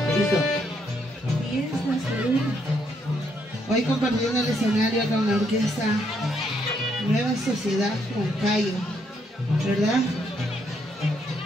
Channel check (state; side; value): normal; both; correlation 0.74